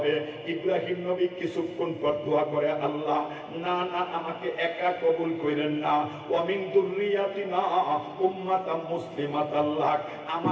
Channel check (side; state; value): both; identical; correlation 1.00